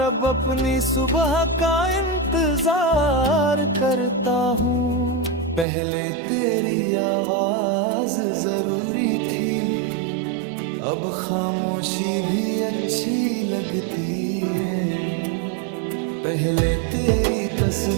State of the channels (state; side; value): drops out; left; at 5.7 s